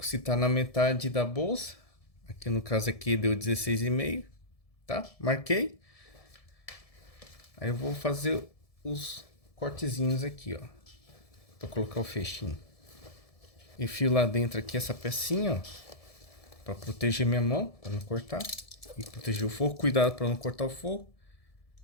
se está na metade da bolsa. Aqui no caso aqui deu 16,5, tá? Marquei. Aí eu vou fazer os cortezinhos aqui, ó, para colocar o fechinho. Enfio lá dentro aqui essa pecinha, ó, para proteger minha mão, para não cortar e proteger o forro. Cuidado para não cortar o forro.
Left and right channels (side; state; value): right; late; 1.7 ms